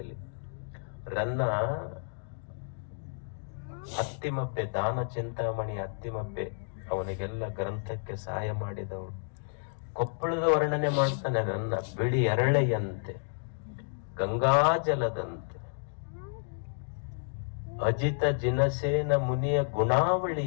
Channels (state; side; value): silent; right; digital silence